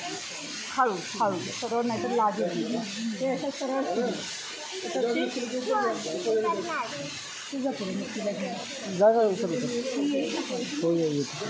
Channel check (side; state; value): both; identical; correlation 1.00